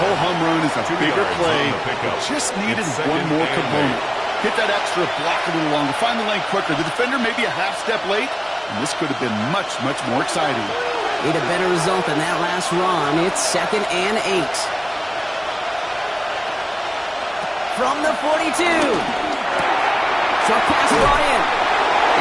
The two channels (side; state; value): both; identical; correlation 1.00